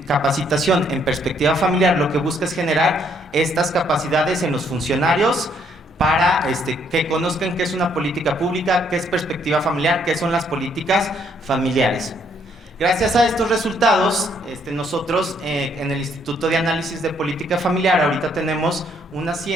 en perspectiva familiar lo que busca es generar estas capacidades en los funcionarios para que conozcan qué es una política pública, qué es perspectiva familiar, qué son las políticas familiares. Gracias a estos resultados, nosotros en el Instituto de Análisis de Política Familiar ahorita tenemos un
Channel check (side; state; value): both; normal; correlation 0.69